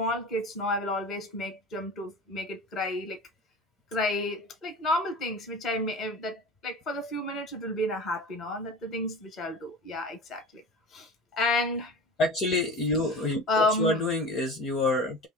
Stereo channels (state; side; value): normal; both; correlation 0.34